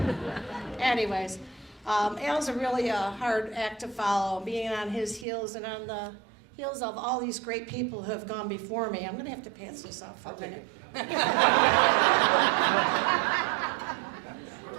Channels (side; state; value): left; drops out; at 5.2 s